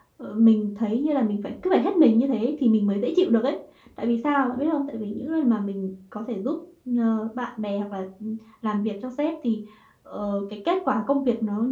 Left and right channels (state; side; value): identical; both; correlation 1.00